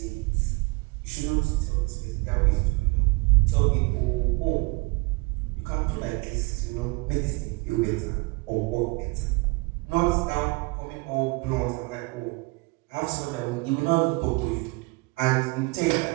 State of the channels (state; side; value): quieter; left; 26.9 dB